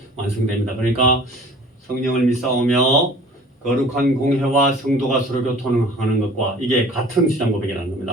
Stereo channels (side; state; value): both; normal; correlation 0.47